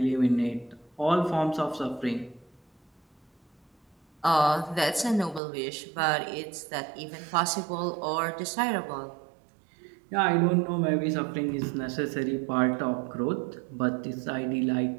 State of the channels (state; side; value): drops out; left; at 5.4 s